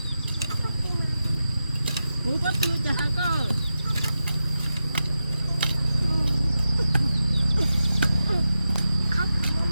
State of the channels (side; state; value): both; inverted; correlation -0.91